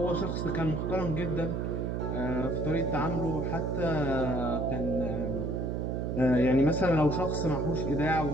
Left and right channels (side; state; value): right; noise; hum, 1 dB below the sound